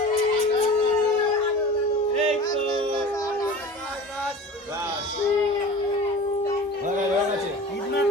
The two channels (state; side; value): normal; both; correlation 0.38